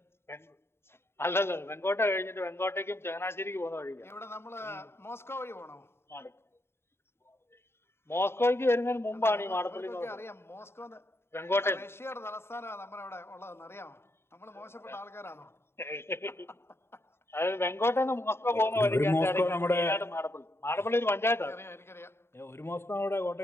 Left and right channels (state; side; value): late; right; 0.12 ms